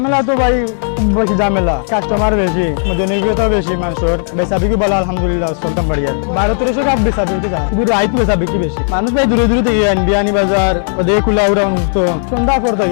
তো ভাই বেশি ঝামেলা, কাস্টমার বেশি, জনপ্রিয়তা বেশি, মানুষের বেচা বিক্রি বলা আলহামদুলিল্লাহ চলতাম বাড়িয়া 12-1300 কাপ বেচা বিক্রি যায়, শুধু রাইত বেচা বিক্রি বেশি। মানুষ ভাই দূরে দূরে থেকে বিয়ানি বাজার ওদের কুলা উড়া মুক্ত সন্ধ্যা পর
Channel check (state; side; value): silent; right; 71 dB below the other